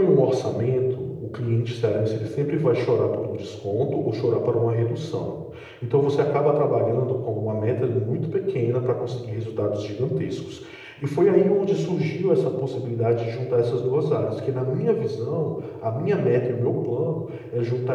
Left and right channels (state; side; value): identical; both; correlation 1.00